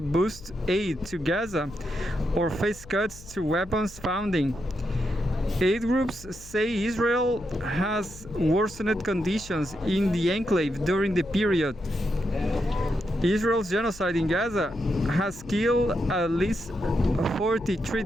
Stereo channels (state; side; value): noise; left; hum, 19 dB below the sound